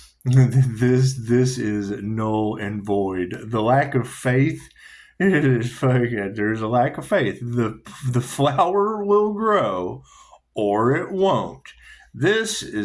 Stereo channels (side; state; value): both; identical; correlation 1.00